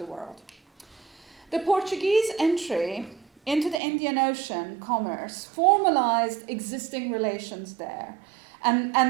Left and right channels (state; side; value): drops out; left; at 3.8 s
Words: world. The Portuguese entry into the Indian Ocean commerce formalized existing relations there,